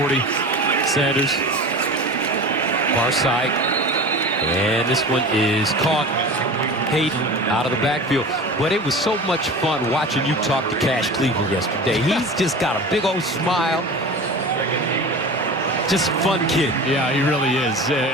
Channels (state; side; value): normal; both; correlation 0.34